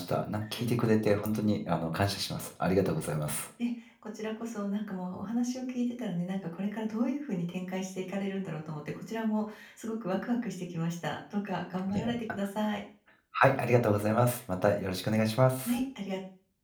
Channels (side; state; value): both; identical; correlation 1.00